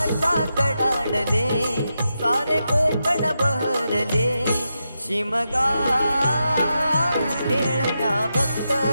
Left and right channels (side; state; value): both; inverted; correlation -0.87